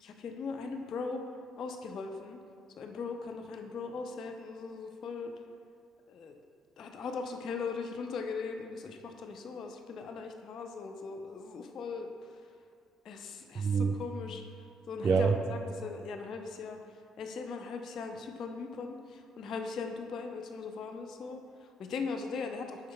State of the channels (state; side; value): normal; both; correlation 0.72